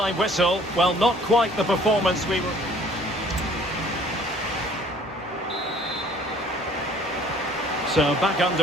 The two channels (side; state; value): both; normal; correlation 0.55